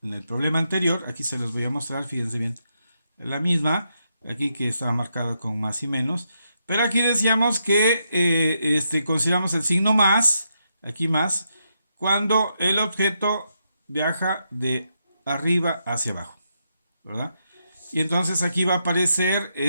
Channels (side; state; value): both; inverted; correlation -0.81